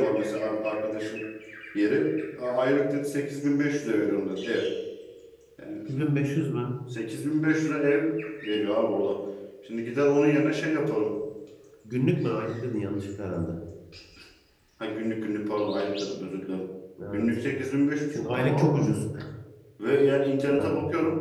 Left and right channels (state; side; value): identical; both; correlation 1.00